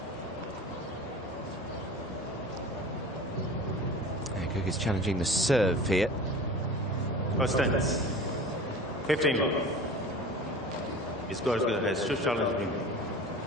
Goerges challenging the serve here. First tennis. 15 love. It's Goerges has 2 challenges.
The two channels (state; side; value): normal; both; correlation 0.38